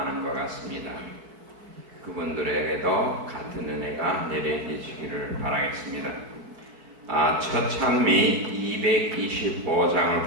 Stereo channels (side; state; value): left; late; 4.6 ms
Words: 것 같습니다. 그분들에게도 같은 은혜가 내려지시기를 바라겠습니다. 첫 찬미